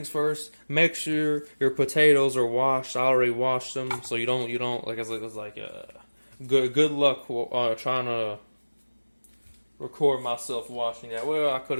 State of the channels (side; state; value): both; inverted; correlation -1.00